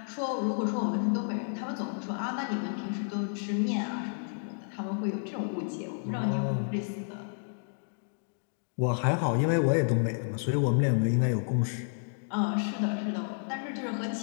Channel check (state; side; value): silent; right; digital silence